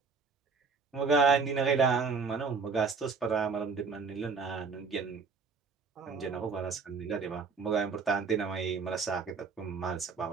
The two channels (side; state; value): left; quieter; 4.9 dB